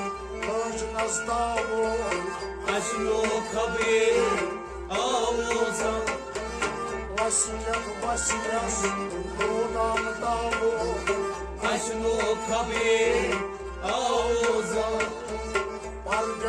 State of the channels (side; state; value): both; identical; correlation 1.00